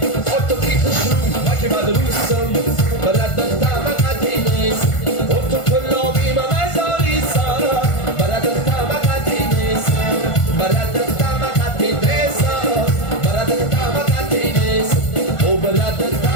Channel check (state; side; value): late; right; 1.5 ms